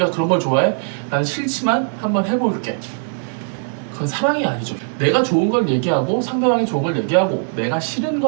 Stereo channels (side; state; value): left; silent; digital silence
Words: 그런 걸 좋아해? 나는 싫지만 한번 해볼게. 그건 사랑이 아니죠. 내가 좋은 걸 얘기하고 상대방이 좋은 걸 얘기하고, 내가 싫은